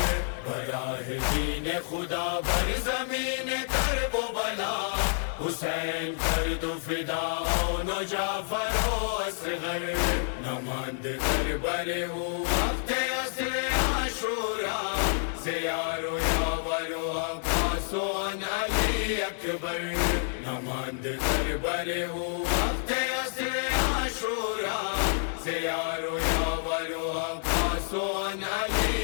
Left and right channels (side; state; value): right; silent; digital silence